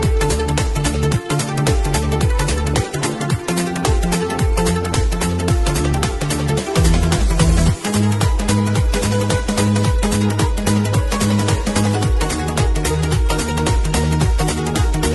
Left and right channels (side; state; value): both; identical; correlation 1.00